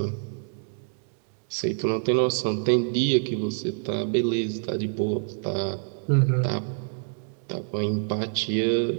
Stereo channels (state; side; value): silent; left; 61 dB below the other